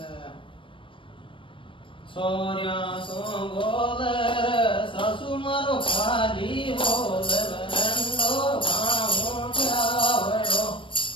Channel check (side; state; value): right; late; 0.25 ms